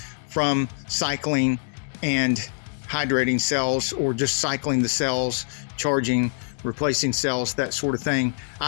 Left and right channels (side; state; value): right; silent; digital silence